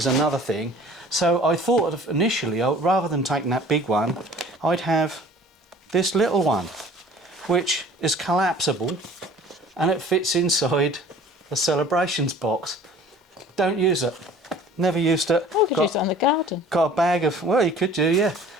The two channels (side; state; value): both; normal; correlation 0.48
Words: another thing. So I thought of initially, rather than taking that big one, I'd have this little one, which is collapsible, and it fits inside a celebrations box. Don't use it. Never used it. Oh, you could use it on the garden. Got a bag of, well, you could do, yeah.